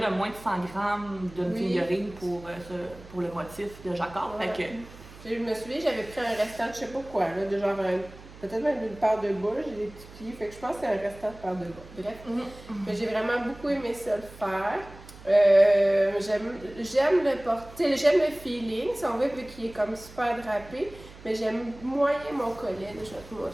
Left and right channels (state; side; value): noise; right; hum, 19 dB below the sound